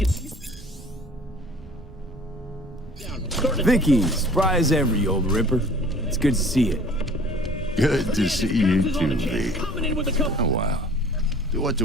see. Vicky, spry as ever, you old ripper. It's good to see you. Good to see you too, V. Coming in with a couple. Oh, wow. To what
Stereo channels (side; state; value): both; normal; correlation 0.49